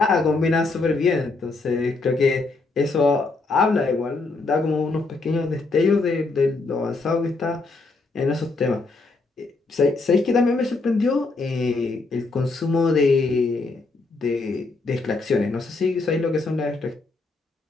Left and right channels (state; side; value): quieter; right; 3.6 dB